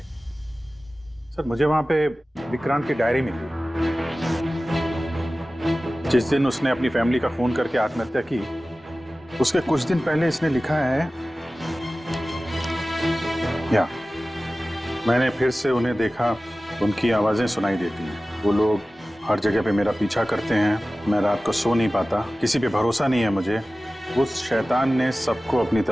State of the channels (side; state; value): both; normal; correlation 0.96